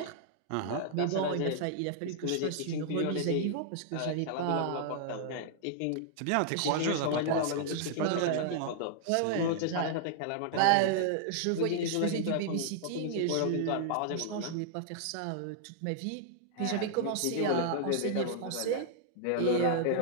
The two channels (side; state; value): both; different; correlation -0.01